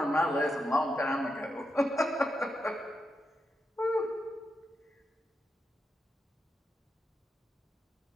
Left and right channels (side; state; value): both; normal; correlation 0.85